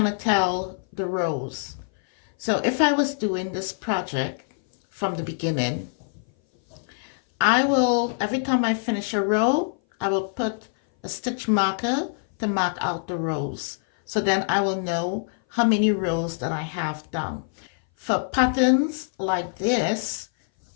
tell the rows. So if I was doing this project from the beginning, I will, every time I finish a row, I will put a stitch marker to mark out the rows. So then I will know how many rows that I have done. For patterns like this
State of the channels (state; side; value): silent; right; 58 dB below the other